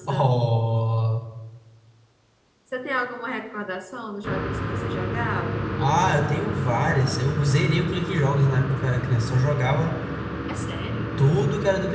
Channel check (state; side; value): identical; both; correlation 1.00